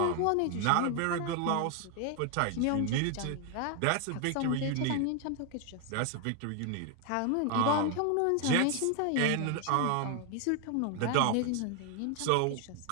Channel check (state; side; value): different; both; correlation 0.01